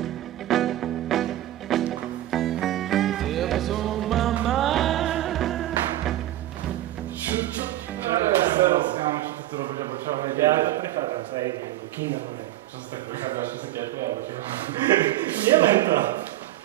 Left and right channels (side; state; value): left; quieter; 14.4 dB